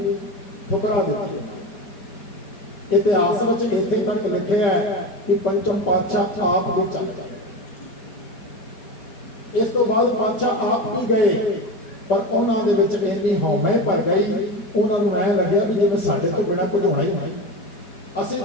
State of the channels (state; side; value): late; right; 4.2 ms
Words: ठुकरा दी। इतिहास में इत्थे तक लिखे है कि पंचम पातशाह आप भी चल गए। इस तो बाद पातशाह आप भी गए, पर उन्होंने इन्नी हौमे भर गई, उन्होंने ऐ लगे भी जिवें साडे तो बिना कुछ होना ही नहीं। असीं